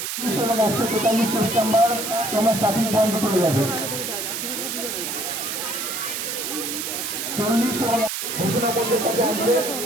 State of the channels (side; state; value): right; noise; hiss, 4 dB below the sound